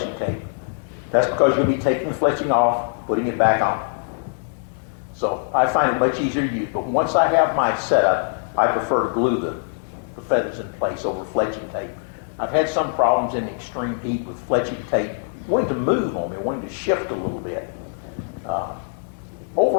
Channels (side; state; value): right; silent; digital silence